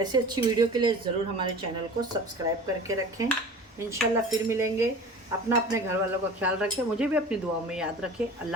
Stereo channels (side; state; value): both; normal; correlation 0.39